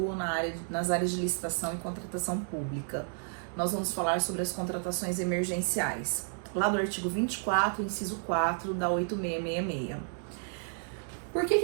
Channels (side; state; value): left; silent; 57 dB below the other